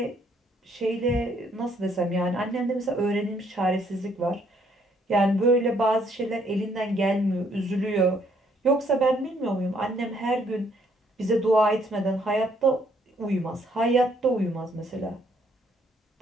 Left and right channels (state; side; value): normal; both; correlation 0.67